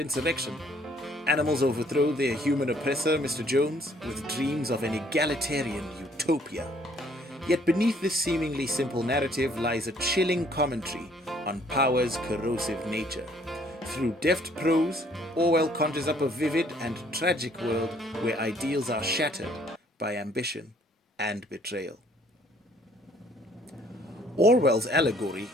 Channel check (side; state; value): both; normal; correlation 0.62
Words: Animals overthrow their human oppressor, Mr. Jones, with dreams of an egalitarian utopia. Yet beneath this seemingly simple narrative lies a chilling commentary on power's corrosive nature. Through deft prose, Orwell conjures up a vivid and tragic world where ideals are shattered by ambition and betrayal. Orwell's allegory